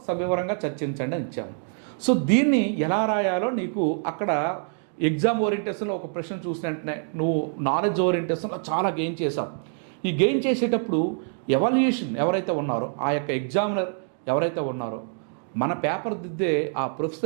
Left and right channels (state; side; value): silent; left; 61 dB below the other